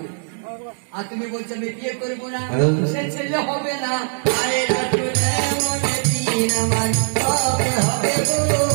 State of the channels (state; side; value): silent; left; digital silence